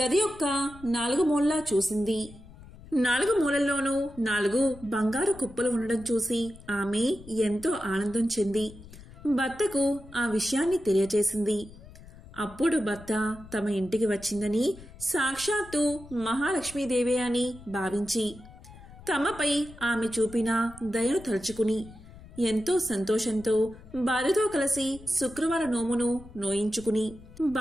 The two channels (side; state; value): left; noise; rumble, 19 dB below the sound